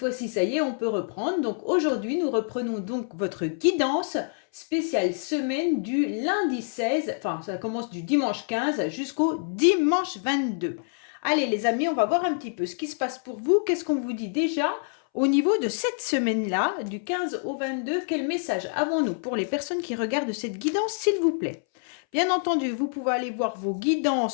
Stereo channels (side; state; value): right; silent; 61 dB below the other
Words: ça y est, on peut reprendre. Donc, aujourd'hui, nous reprenons donc votre guidance spéciale semaine du lundi 16, enfin, ça commence du dimanche 15 jusqu'au dimanche 22. Allez les amis, on va voir un petit peu ce qui se passe pour vous. Qu'est-ce qu'on vous dit déjà au niveau de cette semaine-là, du 15 au 22? Quel message avons-nous pour les personnes qui regardent cette guidance, s'il vous plaît? Bien entendu, vous pouvez aller voir vos